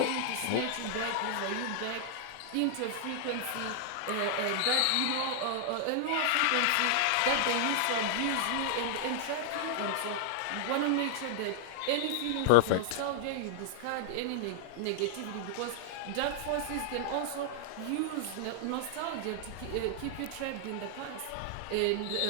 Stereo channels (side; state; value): both; different; correlation -0.01